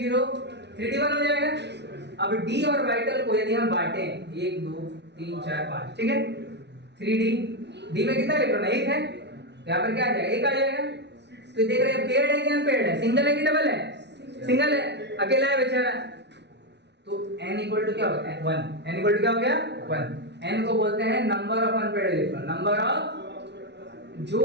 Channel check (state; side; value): late; left; 0.50 ms